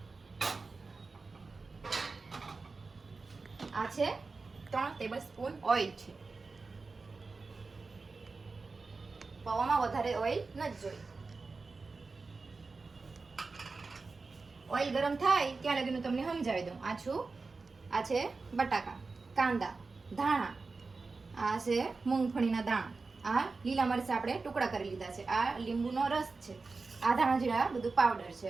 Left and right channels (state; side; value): quieter; left; 4.0 dB